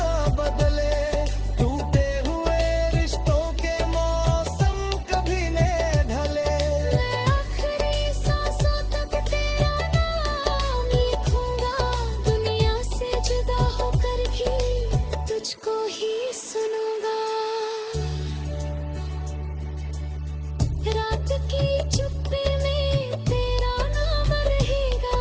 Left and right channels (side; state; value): both; identical; correlation 1.00